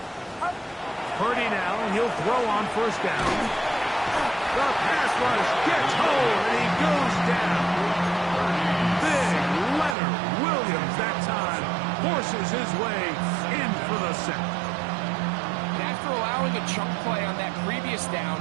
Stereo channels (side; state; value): left; drops out; at 10.0 s